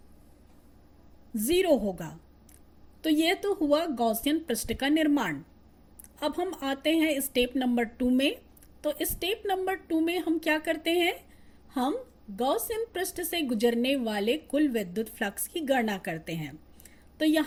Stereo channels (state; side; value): identical; both; correlation 1.00